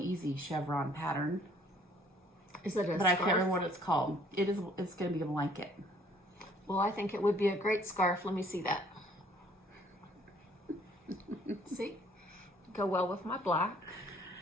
chevron pattern. Is it a But I scarf? can't remember what it's called. It's going to be a blanket. Well, I think it would be a great scarf. Let me see that. See? Go well with my black.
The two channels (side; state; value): both; normal; correlation 0.59